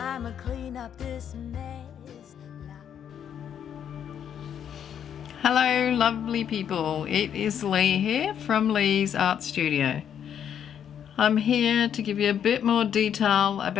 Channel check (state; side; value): quieter; right; 8.9 dB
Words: clean up this mess. Hello lovely people, it is Leigh here from Leigh's Art Studio. I'm here to give you a bit more detail